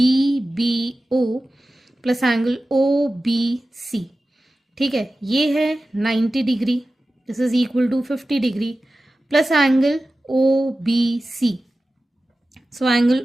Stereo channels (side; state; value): both; normal; correlation 0.95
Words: plus angle OBC. ठीक है, ये है 90 degree, this is equal to 50 degree plus angle OBC. So